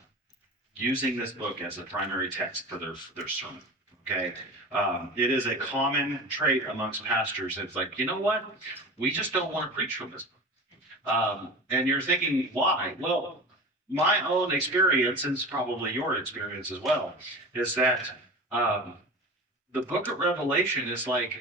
using this book as a primary text for their sermon, okay? It is a common trait amongst pastors. It's like, you know what? We just don't want to preach from this book. And you're thinking, why? Well, my own experience, and it's probably your experience as well, is that the book of Revelation is like,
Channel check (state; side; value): normal; both; correlation 0.33